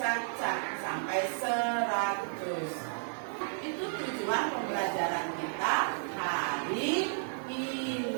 sampai 100. Itu tujuan pembelajaran kita hari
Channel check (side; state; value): left; silent; 56 dB below the other